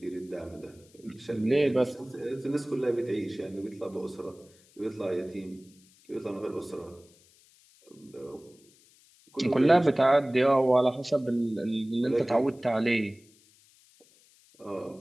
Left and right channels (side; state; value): left; noise; hiss, 29 dB below the sound